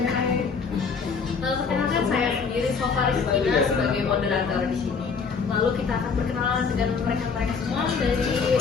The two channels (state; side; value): quieter; right; 5.4 dB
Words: Perkenalkan saya sendiri Sofa Rizkina sebagai moderator di sini. Lalu kita akan berkenalan dengan mereka-mereka semua dari